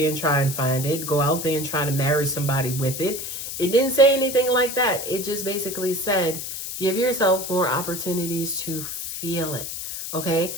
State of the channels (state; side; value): noise; left; hiss, 6 dB below the sound